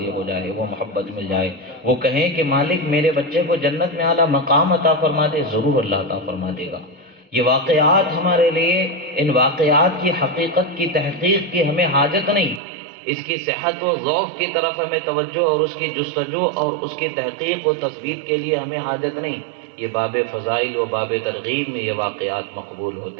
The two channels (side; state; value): left; drops out; at 12.6 s